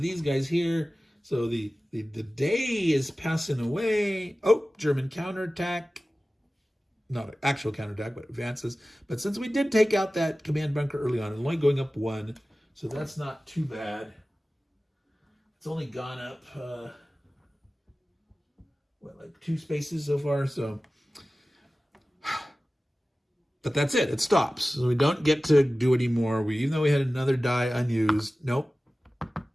these guys here. So the day is passing away. Oh, German counterattack. Not an actual counterattack, but advances. But since we did take out that command bunker early on, it's only going up 1, so that's not too bad. It's only gone up, like 2 spaces so far, so. But that's it, it stops. So we don't get to do any more. Even though we had another die unused, nope,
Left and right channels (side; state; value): both; normal; correlation 0.96